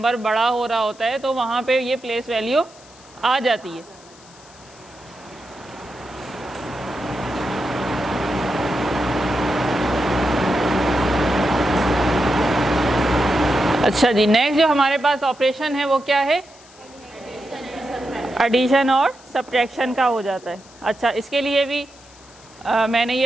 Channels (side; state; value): left; noise; hiss, 24 dB below the sound